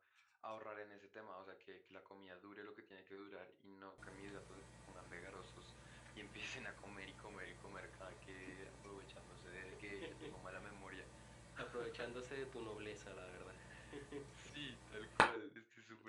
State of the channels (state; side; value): identical; both; correlation 1.00